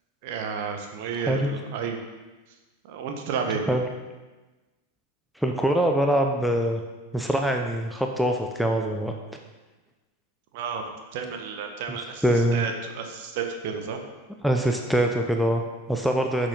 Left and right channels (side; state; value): both; normal; correlation 0.60